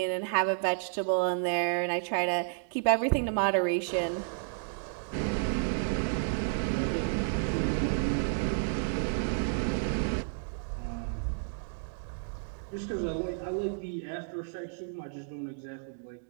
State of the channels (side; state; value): left; silent; digital silence